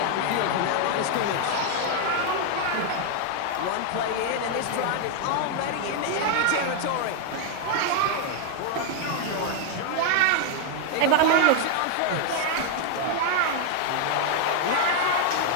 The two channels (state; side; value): different; both; correlation 0.00